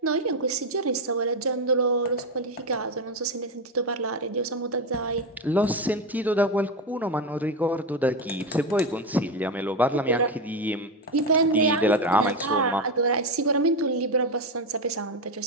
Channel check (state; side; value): normal; both; correlation 0.13